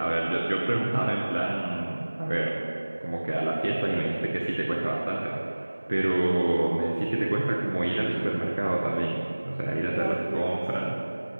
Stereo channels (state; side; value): inverted; both; correlation -1.00